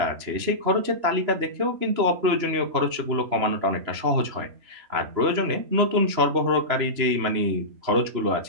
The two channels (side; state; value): left; late; 3.0 ms